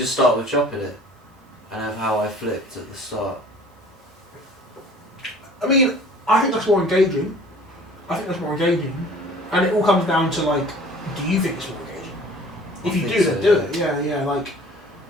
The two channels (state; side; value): normal; both; correlation 0.48